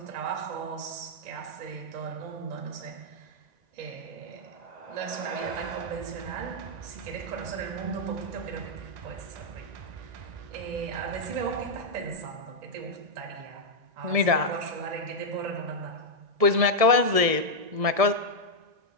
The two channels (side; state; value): left; late; 1.7 ms